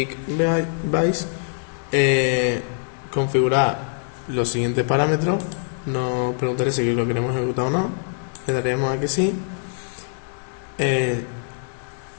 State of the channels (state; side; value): silent; right; digital silence